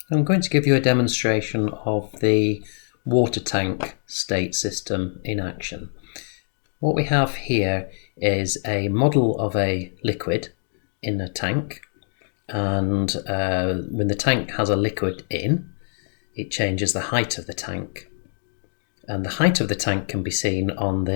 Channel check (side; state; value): right; silent; digital silence